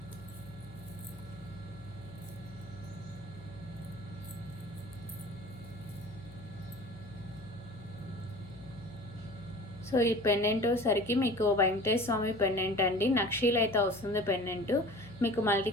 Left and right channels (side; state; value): left; noise; hum, 18 dB below the sound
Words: సో ఈ పెండెంట్ సరికి మీకు వెంకటేశ్వర స్వామి పెండెంట్ అండి. నక్షీలు అయితే వస్తుంది పెండెంట్. మీకు